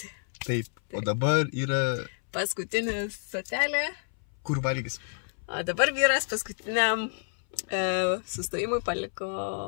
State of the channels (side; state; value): right; silent; 59 dB below the other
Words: Taip, o dabar yra... Paskutinė stotelė. Kur valgys? O dabar vyras paskutiniam sustojimui